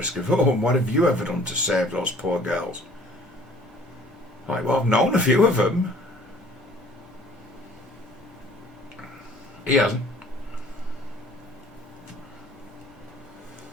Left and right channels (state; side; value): normal; both; correlation 0.53